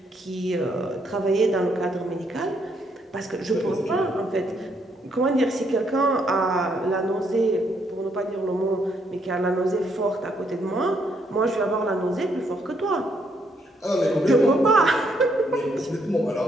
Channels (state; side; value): normal; both; correlation 0.72